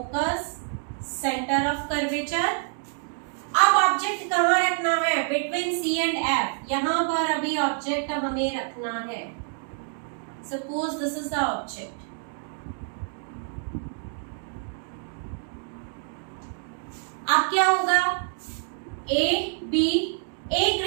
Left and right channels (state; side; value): silent; left; 60 dB below the other